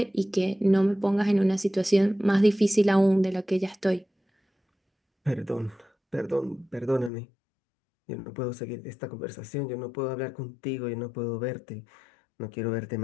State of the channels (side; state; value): right; drops out; at 7.1 s